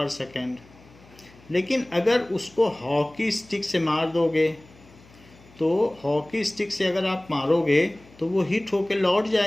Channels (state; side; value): noise; left; hum, 25 dB below the sound